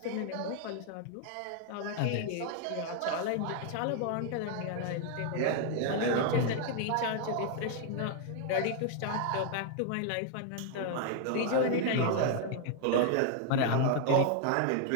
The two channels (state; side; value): different; both; correlation 0.00